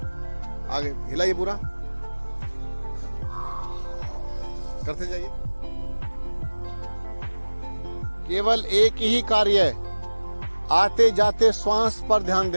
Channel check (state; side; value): inverted; both; correlation -1.00